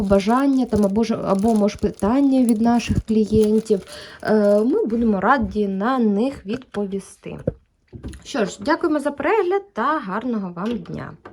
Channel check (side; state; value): both; identical; correlation 1.00